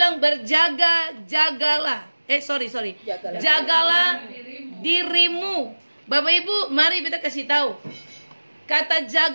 jagalah dirimu. Bapak Ibu, mari kita kasih tahu. Kata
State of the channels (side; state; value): both; inverted; correlation -1.00